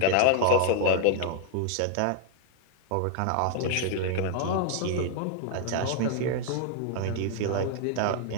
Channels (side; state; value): both; different; correlation 0.00